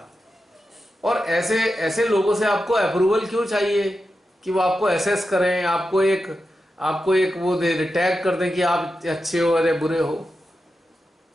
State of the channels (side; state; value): both; normal; correlation 0.90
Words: और ऐसे ऐसे लोगों से आपको अप्रूवल क्यों चाहिए कि वो आपको एसेस करें, आपको एक वो दे टैग कर दें कि आप अच्छे हो अरे बुरे हो।